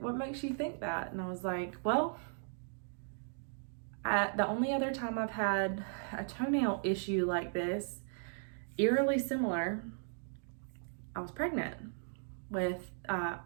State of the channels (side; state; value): left; silent; digital silence